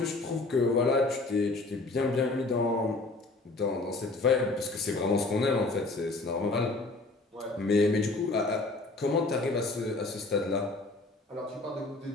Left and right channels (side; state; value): right; quieter; 3.2 dB